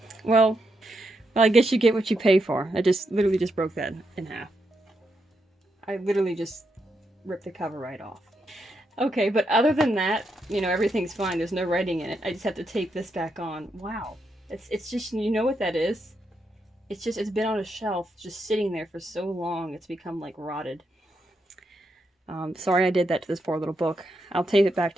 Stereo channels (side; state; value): both; normal; correlation 0.82